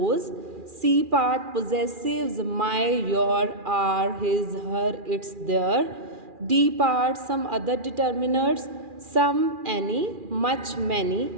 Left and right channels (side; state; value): left; late; 2.4 ms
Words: C part possessives my, your, our, his, her, its, their, D part some other determiners, some, any, much, many,